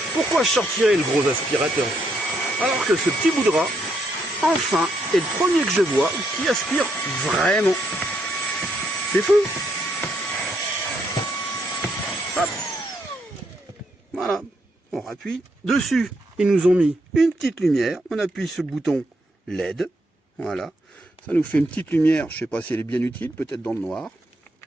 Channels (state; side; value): normal; both; correlation 0.75